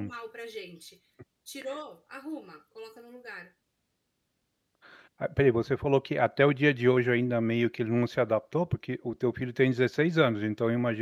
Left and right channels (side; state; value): both; identical; correlation 1.00